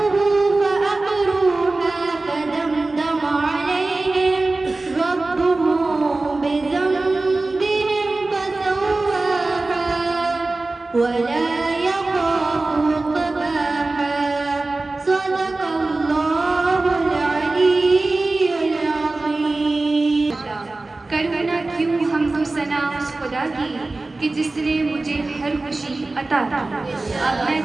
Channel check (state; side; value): quieter; left; 3.2 dB